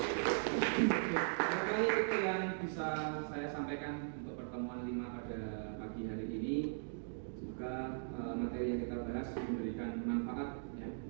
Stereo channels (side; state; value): left; silent; digital silence